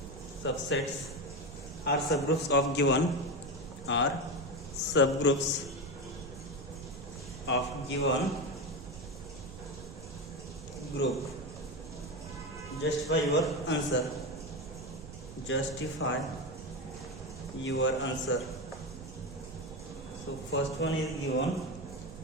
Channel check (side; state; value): right; noise; rumble, 13 dB below the sound